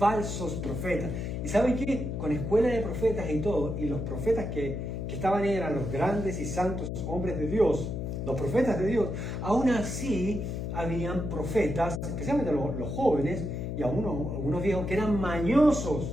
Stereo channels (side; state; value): left; noise; hum, 4 dB below the sound